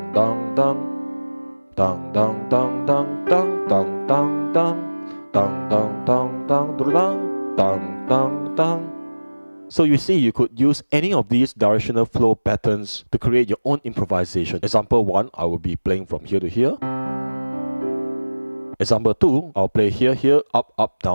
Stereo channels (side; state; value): both; inverted; correlation -1.00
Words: dun dun dun dun dun dun dun dun dun dun dun dun dun dun dun dun dun dun. So you see, you could use any of these directional flow patterns to create your own improvisation. Example 1, I will be playing from here to here. Example 2, I'll play here, here, up, up,